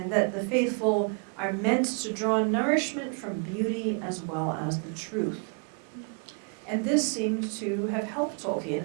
that the faithful are meant to draw nourishment from beauty as well as the truth. And this seemed to have helped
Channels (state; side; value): quieter; left; 39.6 dB